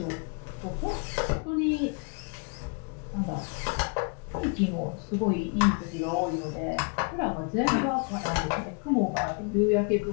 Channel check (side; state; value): right; quieter; 36.2 dB